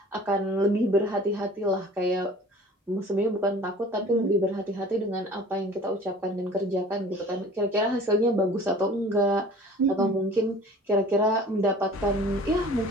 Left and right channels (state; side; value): normal; both; correlation 0.46